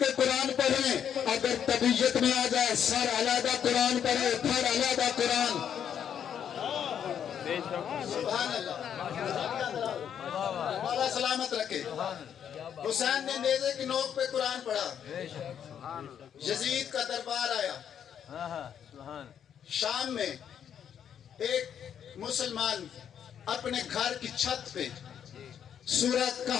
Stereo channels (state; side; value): quieter; right; 8.7 dB